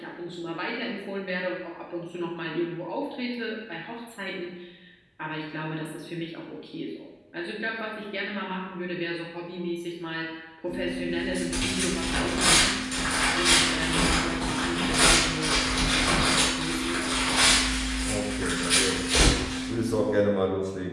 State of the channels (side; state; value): both; identical; correlation 1.00